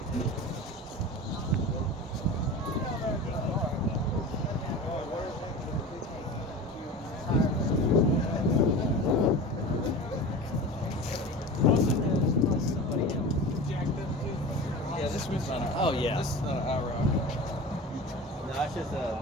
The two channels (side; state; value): both; normal; correlation 0.33